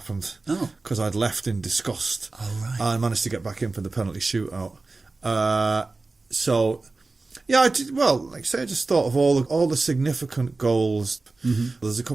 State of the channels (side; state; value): left; quieter; 3.5 dB